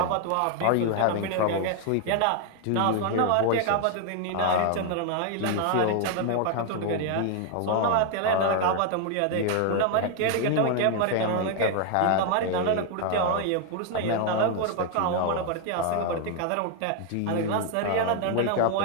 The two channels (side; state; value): both; different; correlation 0.00